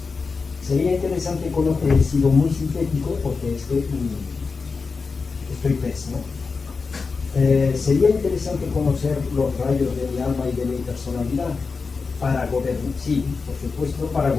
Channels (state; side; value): quieter; right; 4.6 dB